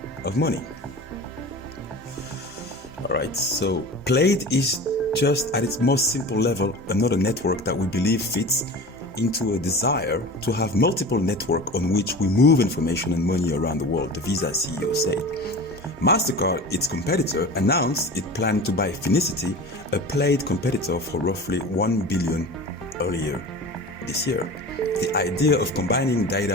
of money. All right, so Plaid is just at its most simple level another network that we believe fits into a desire to have multiple networks on which we move information and money around the world, the Visa CEO said. MasterCard, its competitor, announced it planned to buy Finicity, a Plaid competitor, for roughly $1 billion earlier this year. The idea of combining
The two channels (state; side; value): normal; both; correlation 0.35